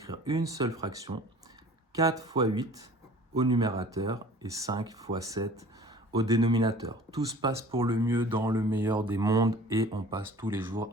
une seule fraction, 4 fois 8 au numérateur et 5 fois 7 au dénominateur. Tout se passe pour le mieux dans le meilleur des mondes et on passe tous les jours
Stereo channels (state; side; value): normal; both; correlation 0.46